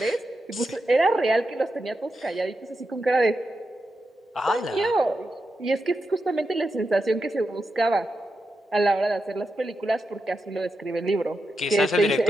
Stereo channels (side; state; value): both; normal; correlation 0.88